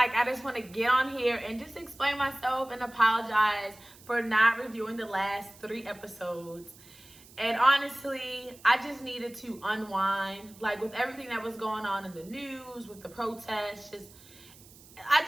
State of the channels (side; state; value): right; noise; hiss, 23 dB below the sound